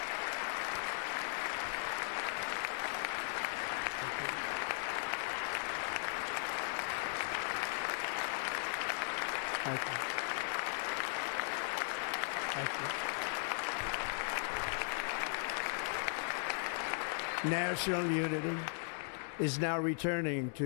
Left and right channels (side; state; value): right; silent; digital silence